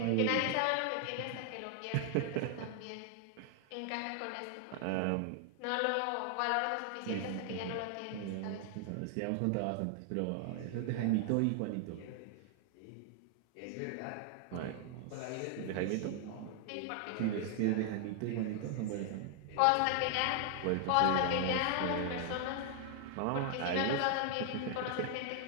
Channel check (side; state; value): both; different; correlation 0.00